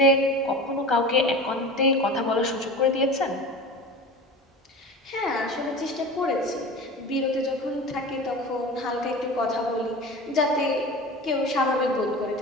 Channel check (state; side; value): normal; both; correlation 0.33